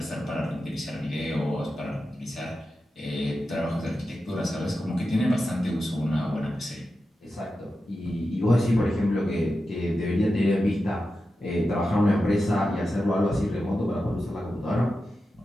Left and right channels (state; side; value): normal; both; correlation 0.91